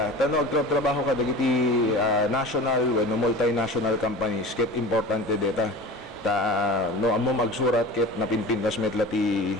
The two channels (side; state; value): both; normal; correlation 0.35